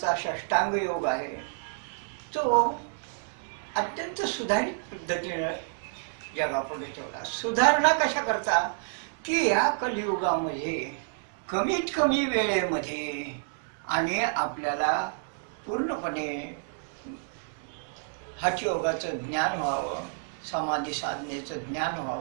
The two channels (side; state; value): left; silent; digital silence